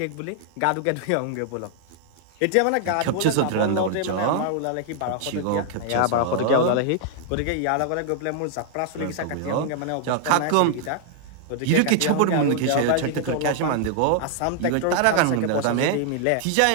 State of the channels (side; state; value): both; different; correlation 0.00